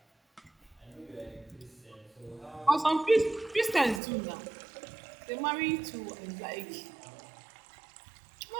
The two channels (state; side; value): drops out; left; at 4.0 s